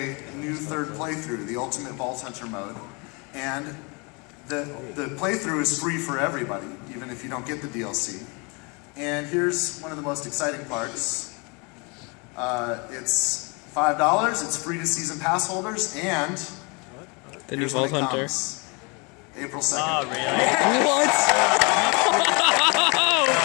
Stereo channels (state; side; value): quieter; right; 30.7 dB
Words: new third playthrough, the Ultimate Vault Hunter mode. And the playthrough is free for everybody, even if you don't get the DLC. And here's one of the most exciting parts. It's $5, it's free to season pass holders, and the new Vault Hunter. April 2nd. Oh, really? What?